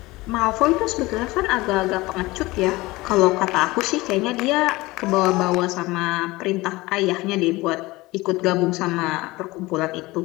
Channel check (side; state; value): right; quieter; 20.7 dB